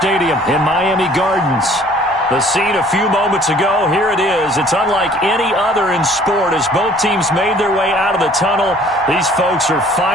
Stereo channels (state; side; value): normal; both; correlation 0.54